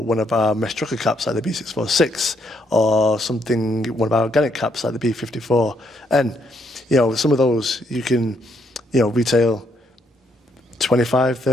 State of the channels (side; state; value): both; normal; correlation 0.73